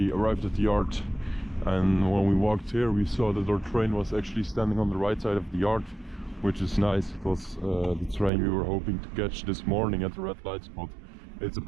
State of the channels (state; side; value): drops out; left; at 8.3 s